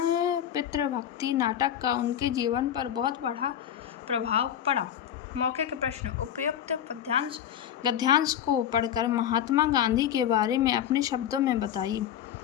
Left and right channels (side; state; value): right; quieter; 10.0 dB